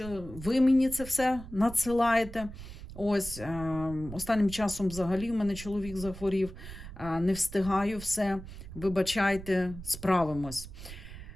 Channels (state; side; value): noise; right; rumble, 13 dB below the sound